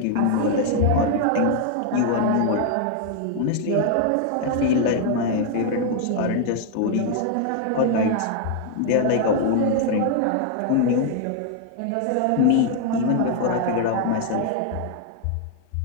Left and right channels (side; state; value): both; different; correlation 0.00